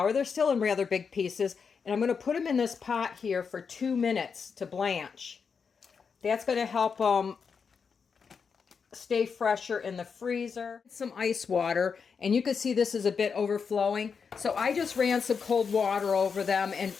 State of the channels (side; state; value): right; quieter; 5.9 dB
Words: They're still in rather big pieces. And I'm going to put them in this pot here for 2 minutes to blanch. That's going to help them stay fresher in the freezer. Some ice water, and you can see this is a bit overflowing. So I just ran some cold water over them and